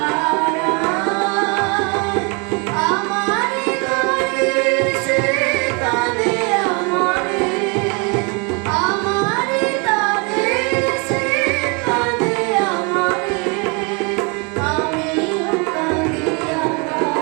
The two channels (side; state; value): left; quieter; 32.4 dB